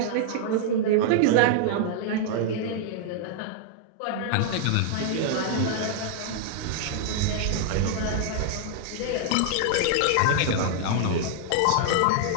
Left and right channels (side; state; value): both; different; correlation -0.01